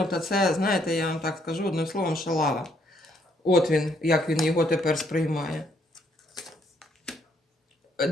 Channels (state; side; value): normal; both; correlation 0.70